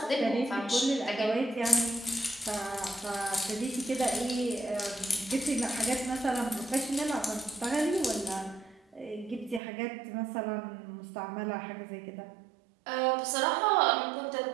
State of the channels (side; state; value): left; drops out; at 9.6 s